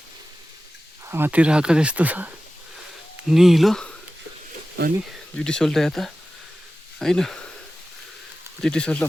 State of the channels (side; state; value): both; normal; correlation 0.95